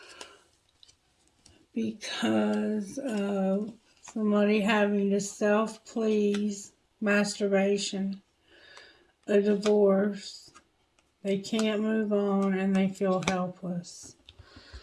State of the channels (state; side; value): identical; both; correlation 1.00